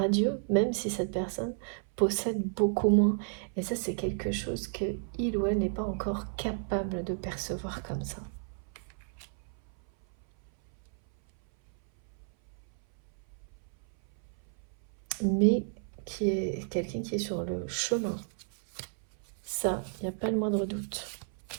même si cette personne possède beaucoup moins. Et ça, c'est quelque chose que il ou elle n'est pas encore capable de percevoir comme ça. Mais qui est quelqu'un qui est sur le chemin. Ça, il n'y a pas le moindre doute.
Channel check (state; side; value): silent; left; 56 dB below the other